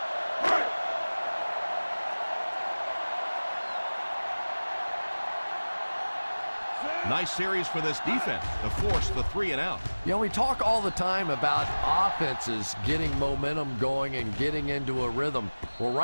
Nice series for this defense to force the 3 and out. You know, we talk all the time about offenses getting momentum going and getting into a rhythm. Well,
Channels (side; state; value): both; inverted; correlation -1.00